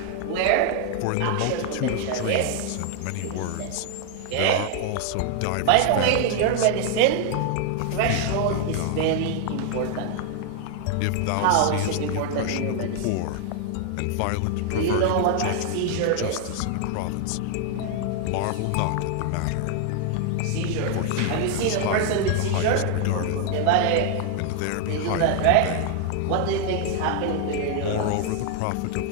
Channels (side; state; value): both; different; correlation 0.00